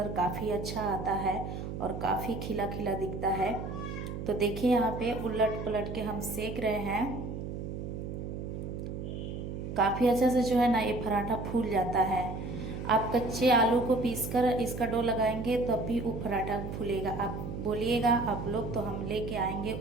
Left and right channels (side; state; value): right; noise; hum, 6 dB below the sound